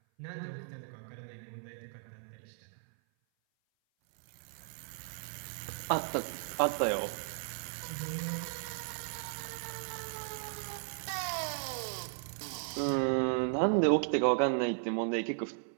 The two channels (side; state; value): left; silent; 54 dB below the other